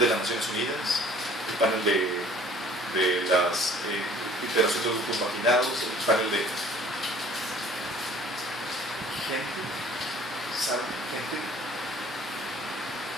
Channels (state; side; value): normal; both; correlation 0.52